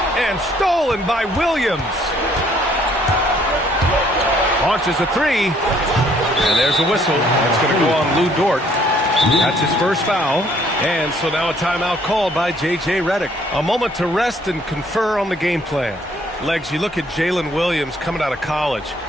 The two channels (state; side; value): normal; both; correlation 0.63